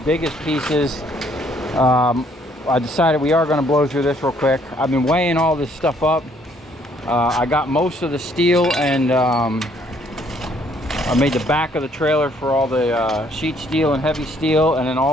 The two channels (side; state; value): both; normal; correlation 0.65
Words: biggest pieces. I decided we are going to blow through this real quick. I've been weighing all this stuff up. I got most of the steel, and I made the back of the trailer for all the sheet steel and heavy steel, and then